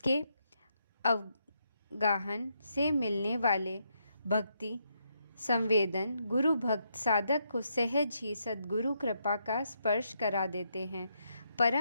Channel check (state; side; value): inverted; both; correlation -0.78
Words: अवगाहन से मिलने वाले भक्ति संवेदन गुरु भक्त साधक को सहज ही सद्गुरु कृपा का स्पर्श करा देते हैं।